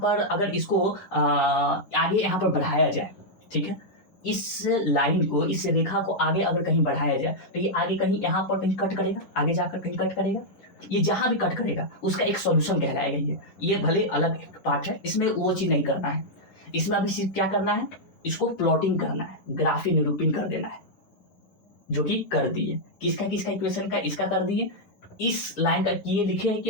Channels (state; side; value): late; right; 10 ms